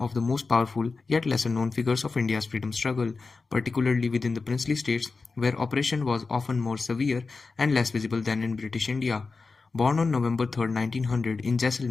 of the most powerful yet lesser known figures of India's freedom struggle, particularly within the princely states where oppression was often more severe and less visible than in British India. Born on November 3rd, 1900 in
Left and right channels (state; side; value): quieter; right; 4.2 dB